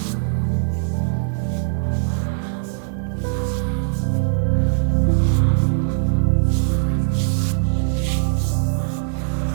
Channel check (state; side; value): silent; left; digital silence